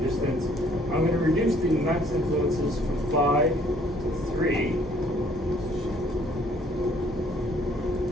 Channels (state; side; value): normal; both; correlation 0.60